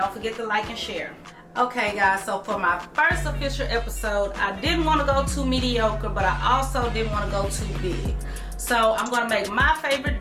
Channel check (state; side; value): identical; both; correlation 1.00